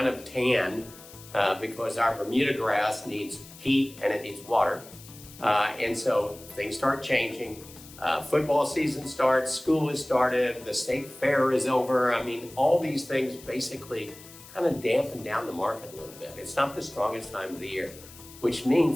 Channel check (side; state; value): left; noise; hiss, 19 dB below the sound